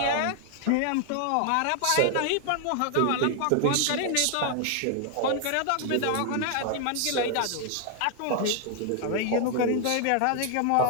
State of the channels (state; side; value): different; both; correlation 0.00